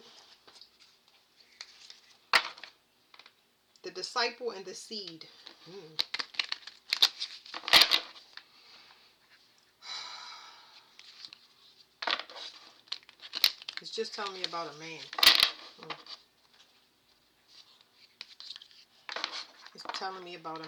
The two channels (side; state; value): both; identical; correlation 1.00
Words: The Disciple and the Seed. It's just telling me about a man. It's telling me about